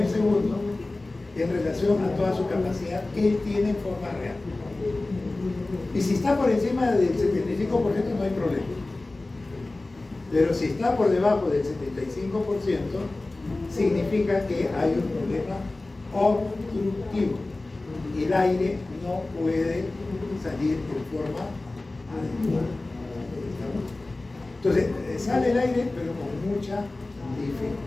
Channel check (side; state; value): right; quieter; 3.0 dB